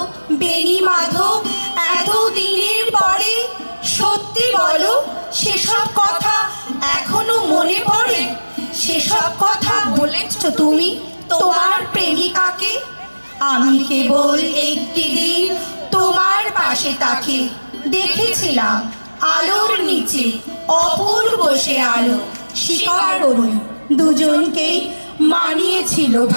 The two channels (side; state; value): both; inverted; correlation -1.00